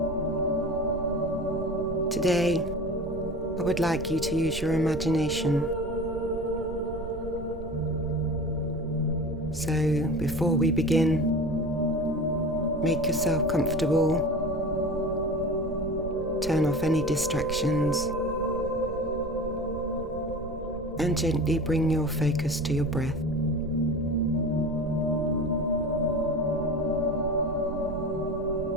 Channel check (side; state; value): right; noise; rumble, 10 dB below the sound